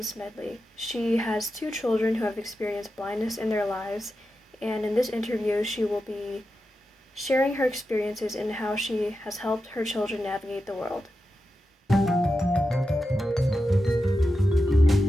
Smedley. She has two children who have experienced blindness in their lives, and in this interview, she will be sharing her experiences and how she has helped her children navigate the world.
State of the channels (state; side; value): normal; both; correlation 0.90